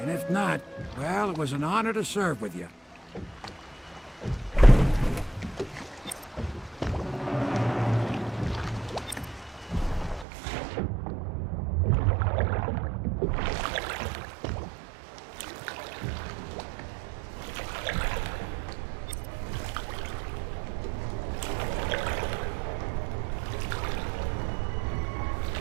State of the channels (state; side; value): drops out; left; at 10.2 s